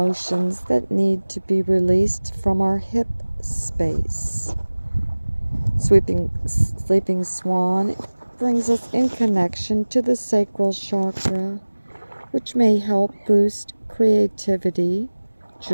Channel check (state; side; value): inverted; both; correlation -1.00